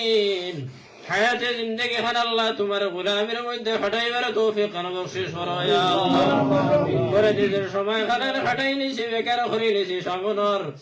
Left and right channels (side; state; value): both; identical; correlation 1.00